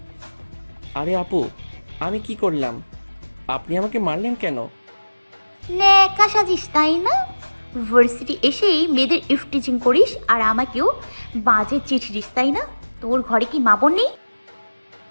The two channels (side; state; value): both; inverted; correlation -1.00